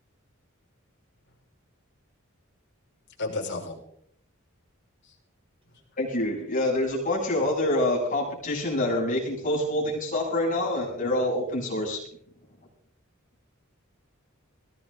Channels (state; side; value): normal; both; correlation 0.10